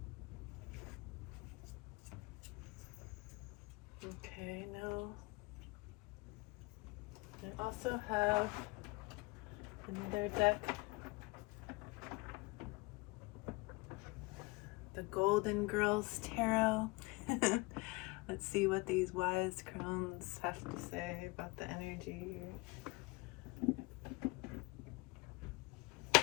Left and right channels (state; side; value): quieter; right; 24.7 dB